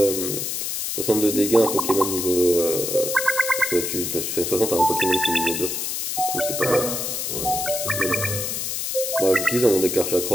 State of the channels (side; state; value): left; noise; hiss, 3 dB below the sound